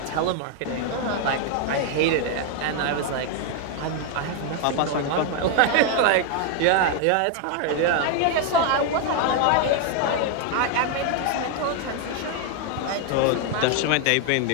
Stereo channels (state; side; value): different; both; correlation 0.00